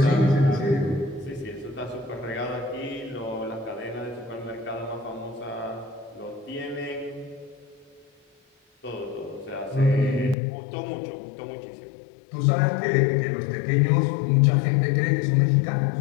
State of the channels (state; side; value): drops out; right; at 10.4 s